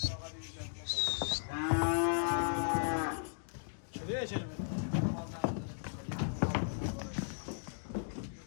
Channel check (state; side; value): silent; right; digital silence